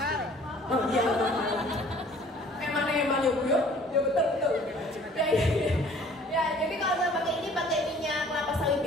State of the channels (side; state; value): both; normal; correlation 0.53